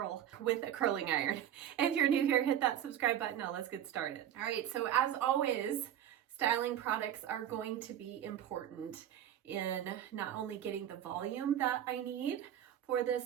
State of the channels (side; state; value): left; quieter; 10.7 dB